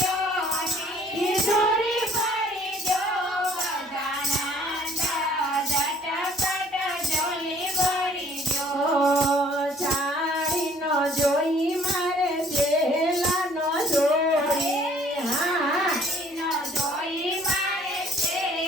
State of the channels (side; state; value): both; normal; correlation 0.58